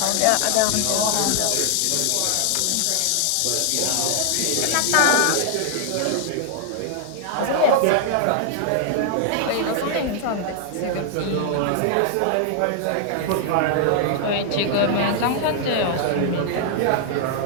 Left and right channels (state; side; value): different; both; correlation 0.00